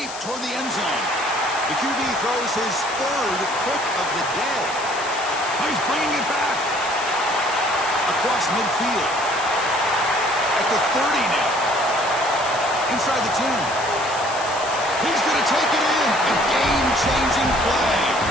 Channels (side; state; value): left; noise; hiss, 11 dB below the sound